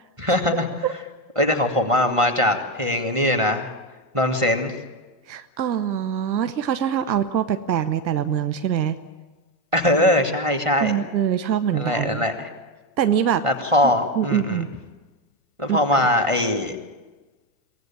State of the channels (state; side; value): late; left; 1.4 ms